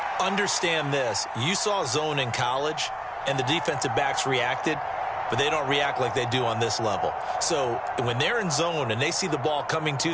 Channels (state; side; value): identical; both; correlation 1.00